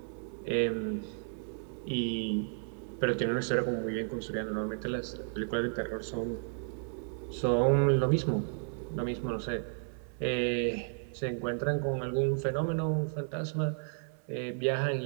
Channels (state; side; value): silent; left; 56 dB below the other